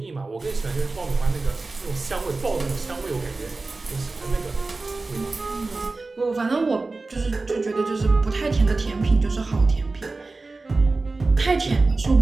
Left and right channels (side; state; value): left; quieter; 3.5 dB